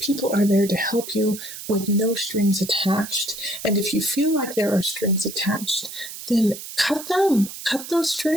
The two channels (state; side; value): noise; right; hiss, 11 dB below the sound